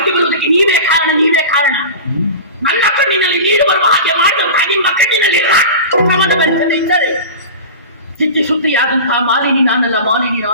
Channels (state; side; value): inverted; both; correlation -0.31